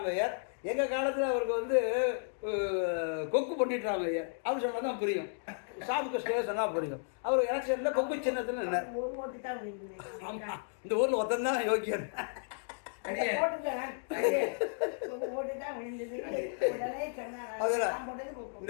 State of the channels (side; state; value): right; silent; digital silence